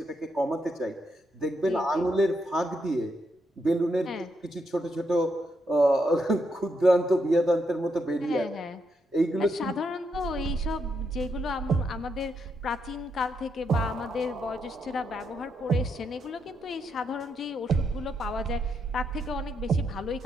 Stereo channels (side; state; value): both; normal; correlation 0.80